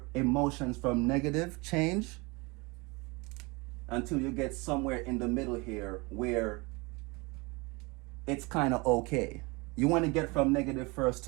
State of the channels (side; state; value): left; quieter; 26.6 dB